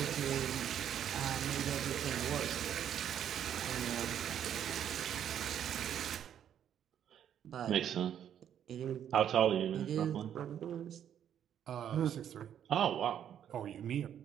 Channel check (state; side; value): quieter; left; 9.6 dB